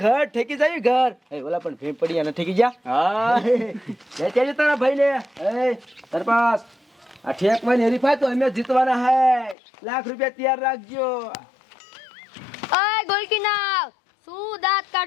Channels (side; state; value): right; drops out; at 9.6 s